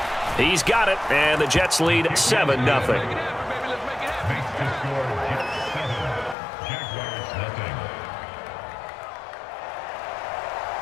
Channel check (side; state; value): right; drops out; at 6.4 s